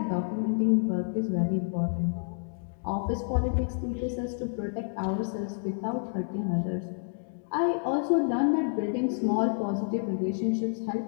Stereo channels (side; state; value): right; silent; digital silence